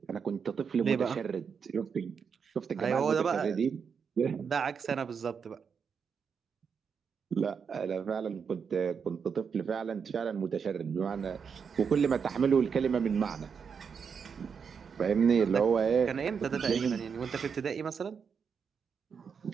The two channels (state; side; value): quieter; left; 6.4 dB